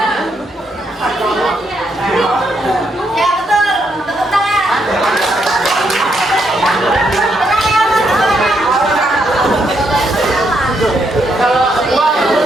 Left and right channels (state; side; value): normal; both; correlation 0.77